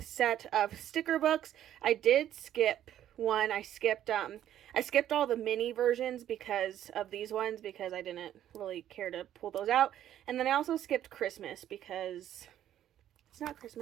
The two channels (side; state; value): left; quieter; 11.4 dB